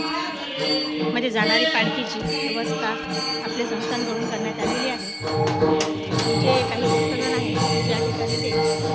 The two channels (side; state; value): both; identical; correlation 1.00